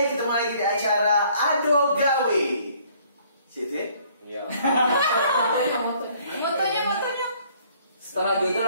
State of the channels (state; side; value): inverted; both; correlation -0.60